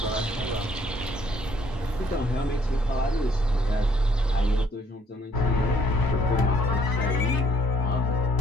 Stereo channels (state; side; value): normal; both; correlation 0.64